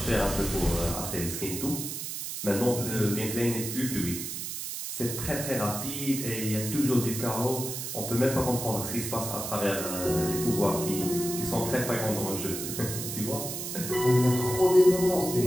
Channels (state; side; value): noise; right; hiss, 5 dB below the sound